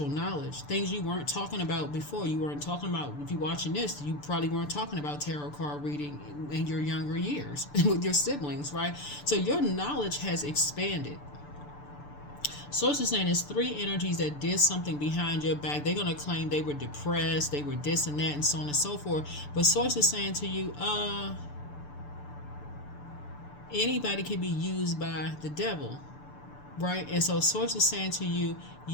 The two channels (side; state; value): right; late; 6.9 ms